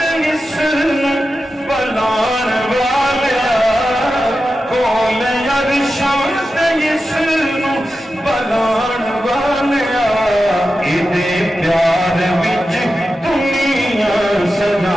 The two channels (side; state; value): both; normal; correlation 0.92